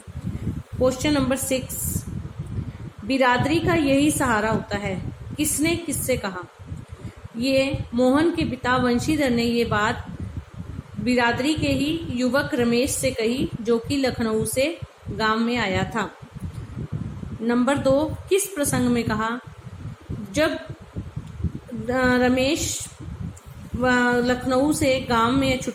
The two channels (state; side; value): identical; both; correlation 1.00